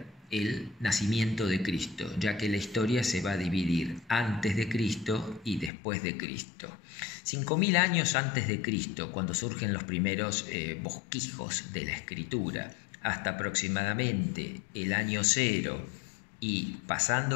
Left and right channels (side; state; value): right; drops out; at 5.7 s